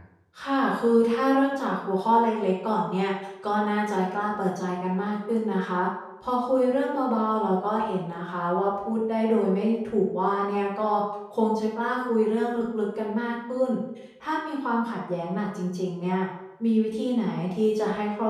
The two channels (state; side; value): identical; both; correlation 1.00